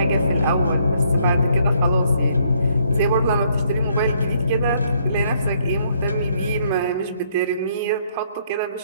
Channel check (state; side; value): inverted; both; correlation -0.68